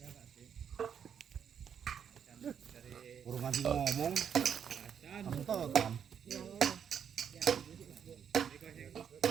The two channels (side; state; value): left; quieter; 8.0 dB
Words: Urung nganti ngomong. Kamu tahu kan?